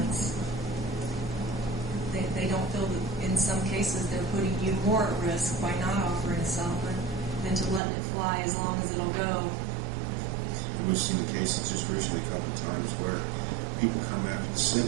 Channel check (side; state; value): left; drops out; at 7.8 s